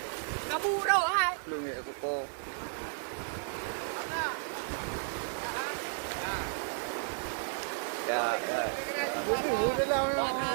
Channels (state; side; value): silent; left; digital silence